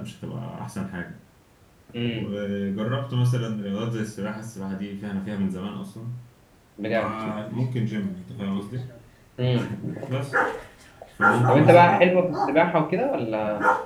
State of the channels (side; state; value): both; identical; correlation 1.00